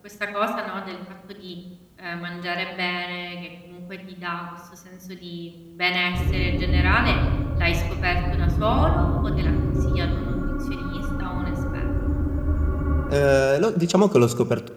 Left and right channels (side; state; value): both; identical; correlation 1.00